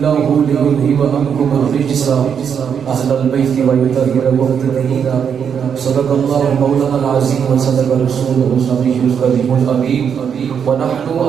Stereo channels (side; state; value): left; quieter; 7.5 dB